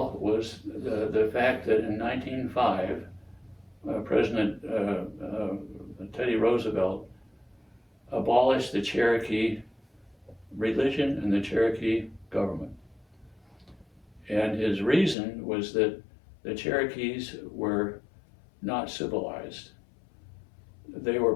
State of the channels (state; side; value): drops out; right; at 15.2 s